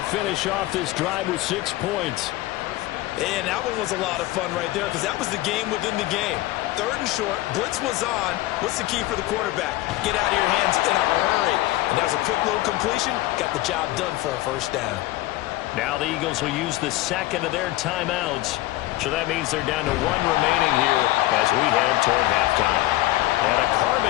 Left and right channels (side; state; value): right; quieter; 17.2 dB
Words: finish off this drive with 6 points. And that one was a lot of fun right there because that was the game within the game. 3rd and short, blitz was on. What's the key for the quarterback? Get out of your hands in a hurry. And that was a quick little completion. Got the job done for a first down. Now the Eagles will use the second of their timeouts. So that means they're down to 1 remaining here as we head toward halftime. And a